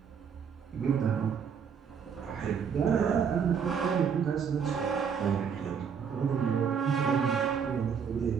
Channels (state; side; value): quieter; left; 6.9 dB